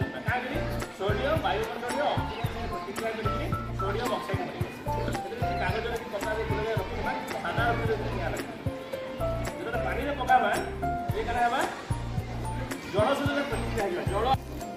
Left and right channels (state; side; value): identical; both; correlation 1.00